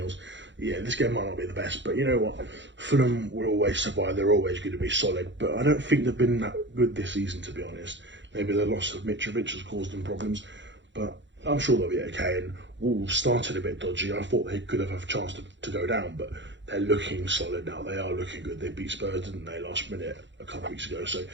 Yeah, this game might not be the best, but you know what? Fulham will always survive. They're always going to be solid, but I don't think they've been that good this season, to be honest. Maybe the loss of Mitrovic has caused them problems, but I'm sure they'll be okay. And Wolves started a bit dodgy. I thought they could have a chance to go down, but they're looking solid now. They are looking good. They beat Spurs, didn't they, last minute a couple of weeks ago? So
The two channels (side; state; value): left; late; 0.54 ms